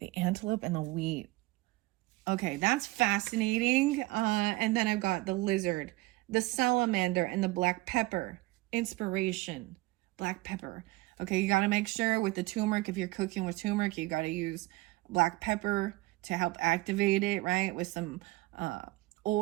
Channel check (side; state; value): left; quieter; 20.8 dB